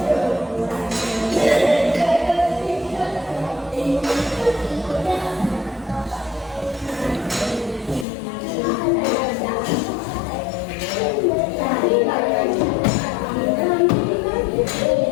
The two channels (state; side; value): drops out; right; at 8.1 s